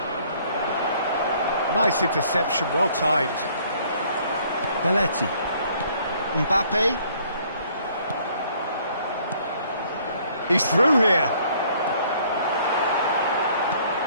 Nice interception, well timed. Belletti. Mbappe. He's through here.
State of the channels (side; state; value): both; inverted; correlation -0.61